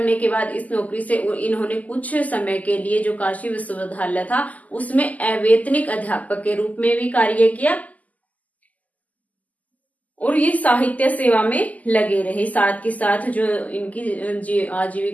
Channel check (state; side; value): late; right; 0.077 ms